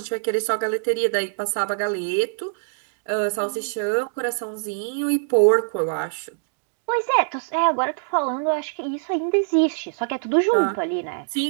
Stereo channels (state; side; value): silent; left; digital silence